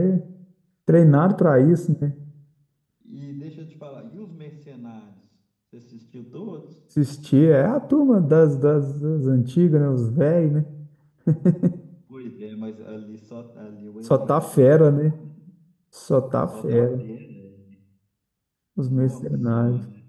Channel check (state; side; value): identical; both; correlation 1.00